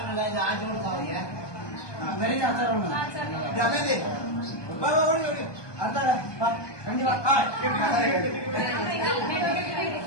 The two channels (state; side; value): late; right; 1.2 ms